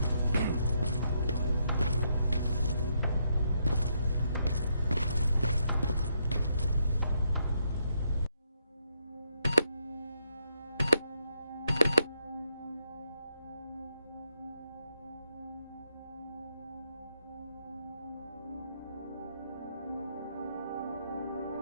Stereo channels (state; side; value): inverted; both; correlation -0.77